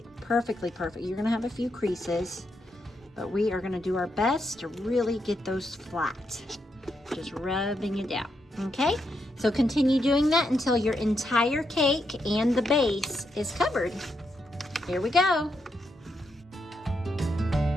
perfectly perfect. You're going to have a few creases, but we are going to do our best to really get those flat. Just rubbing it down. Okay, so continue doing that until your entire cake and the base is covered. Here we go.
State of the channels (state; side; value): normal; both; correlation 0.81